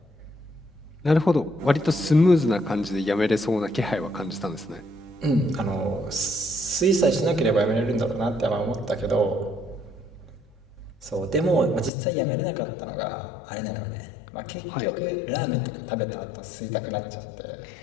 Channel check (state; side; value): drops out; right; at 11.9 s